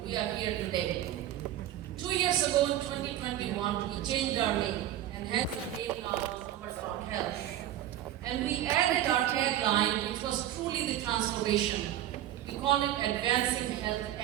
we are here today. 2 years ago in 2021, we changed our name and had the name now as Agrawal Health. And we added our tagline, which was truly the transformation. We call it Advancing Health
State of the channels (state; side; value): quieter; left; 12.5 dB